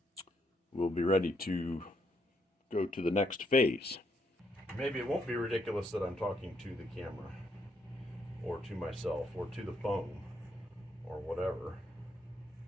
we'll be ready to go to the next phase. Maybe it won't be ridiculous that I'm talking to the camera, or to myself, or to the phone, or whatever.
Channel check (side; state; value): both; normal; correlation 0.75